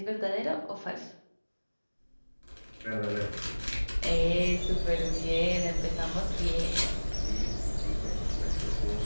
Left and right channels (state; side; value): inverted; both; correlation -1.00